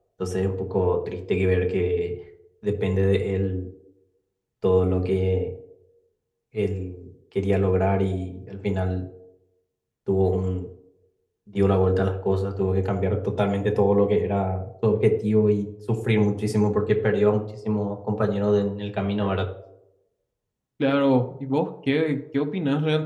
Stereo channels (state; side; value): identical; both; correlation 1.00